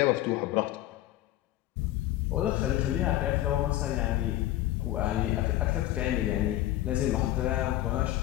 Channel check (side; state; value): right; quieter; 14.8 dB